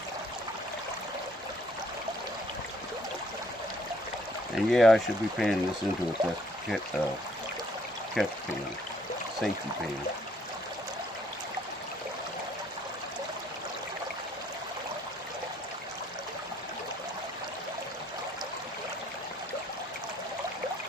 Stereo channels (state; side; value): normal; both; correlation 0.65